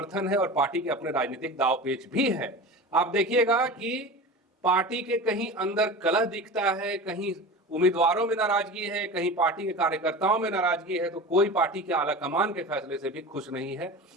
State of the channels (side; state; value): both; normal; correlation 0.32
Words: है और पार्टी के अपने राजनीतिक दाव पेच भी है। आप देखिएगा कि पार्टी के कहीं अंदर कलह दिखता है, कहीं उम्मीदवारों में नाराजगी है, कहीं पार्टी के कार्यकर्ताओं में नाराजगी है, तो कोई पार्टी के आलाकमान के फैसले से भी खुश नहीं है।